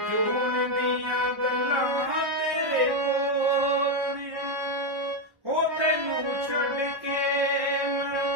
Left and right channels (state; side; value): late; left; 1.2 ms